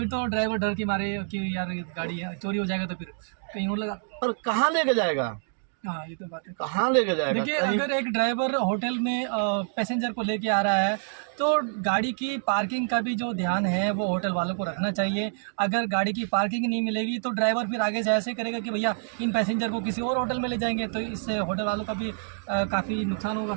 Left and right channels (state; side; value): silent; left; digital silence